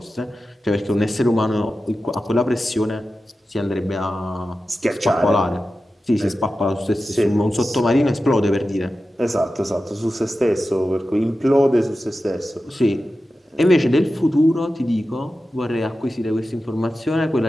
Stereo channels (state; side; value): normal; both; correlation 0.93